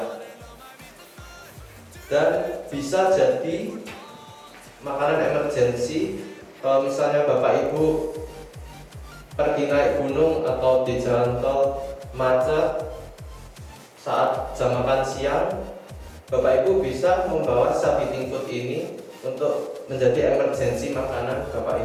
dan bisa jadi makanan emergensi kalau misalnya Bapak Ibu pergi naik gunung atau di jalan tol macet saat jam makan siang, Bapak Ibu bisa membawa self heating food ini untuk menjadi emergency makanan Bapak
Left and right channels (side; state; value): both; identical; correlation 1.00